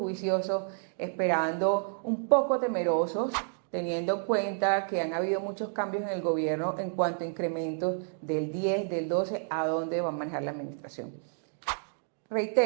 esperando, un poco temerosos, teniendo en cuenta que han habido muchos cambios en el gobierno en cuanto a incrementos del 10, del 12, a dónde va a manejar la administración.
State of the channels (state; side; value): silent; left; digital silence